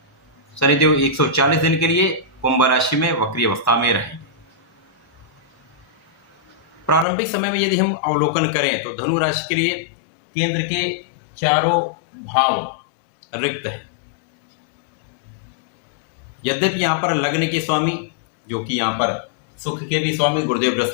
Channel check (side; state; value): right; drops out; at 7.1 s